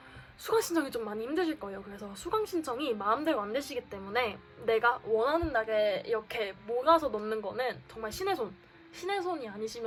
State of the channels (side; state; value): both; identical; correlation 1.00